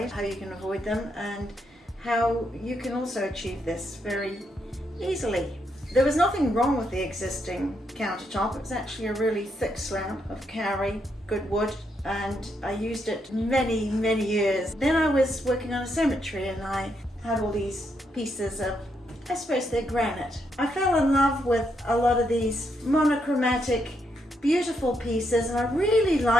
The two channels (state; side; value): normal; both; correlation 0.78